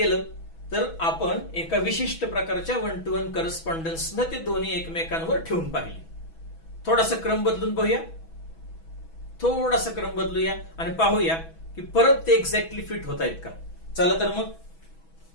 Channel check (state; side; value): late; right; 6.1 ms